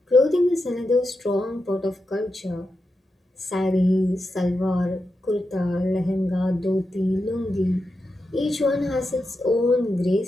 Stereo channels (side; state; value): both; normal; correlation 0.88